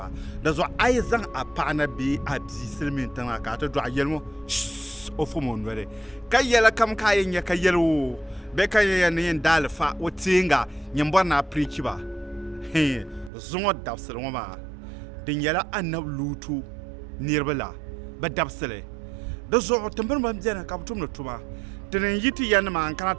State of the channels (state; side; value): drops out; left; at 13.3 s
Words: di zuɣu a yi zaŋ a paɣa na bee a bia silmiin tiŋa ka a ti dɔɣa yɛli ŋɔ o fom o noli ka yɛli kam ka a yɛn nyɛ ka yɛli o bɛ ka yɛn ni yɛn daali fa o teenga yɛn bɔri na pirichi ba zuŋo dabsili ŋɔ maa di nyɛla anabi luutu niriba la bi dabsili di zuɣu timbini ban biɛni ka bi tumdi tuma ti ni yi ti ya nima n kana